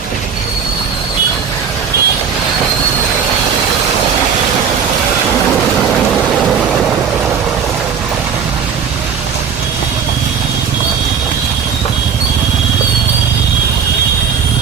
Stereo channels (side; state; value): left; quieter; 6.9 dB